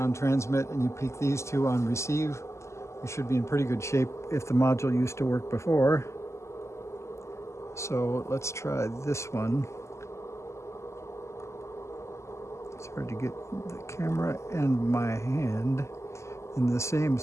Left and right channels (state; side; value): late; right; 0.13 ms